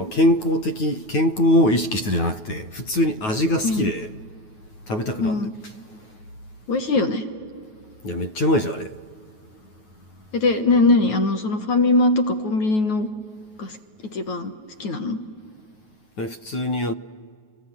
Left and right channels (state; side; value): late; right; 9.3 ms